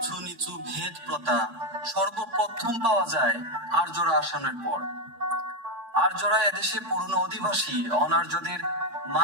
নিচু ভেদ প্রথা সর্বপ্রথম পাওয়া যায় আর্যরা আসামের পর। আর্যরা এদেশে পুরনো অধিবাসী অনার্যদের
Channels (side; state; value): left; late; 4.6 ms